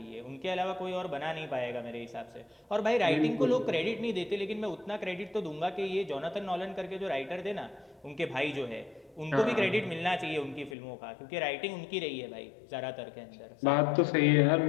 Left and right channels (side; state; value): right; drops out; at 10.8 s